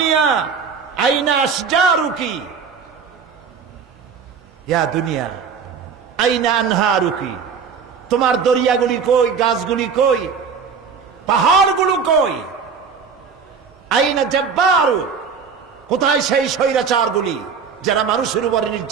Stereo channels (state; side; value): quieter; left; 6.1 dB